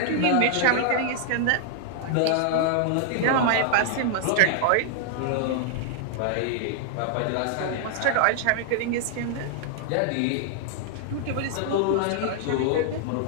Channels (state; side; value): different; both; correlation -0.01